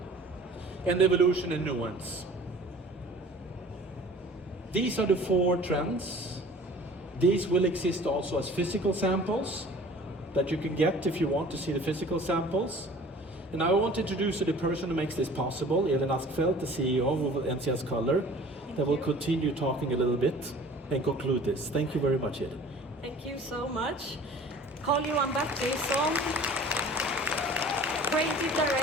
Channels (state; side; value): normal; both; correlation 0.46